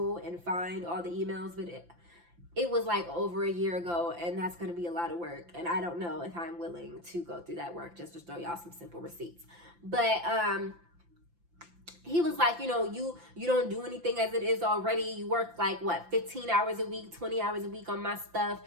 and find all the emails, but it was over a year ago, and that's going to be a lot of work. And I don't know if I'm willing to go through that work just to show y'all some simple receipts. But, he was like, you don't do anything as it is already. You work 15 hours a week, 20 hours a week on my stuff,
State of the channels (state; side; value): late; left; 5.8 ms